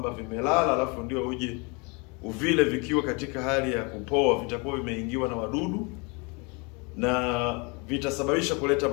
vimelala alafu ndio uje uvile vikiwa katika hali ya kupoa, vitakuwa vimeingiwa na wadudu na vitasababisha kuleta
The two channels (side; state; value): right; quieter; 30.7 dB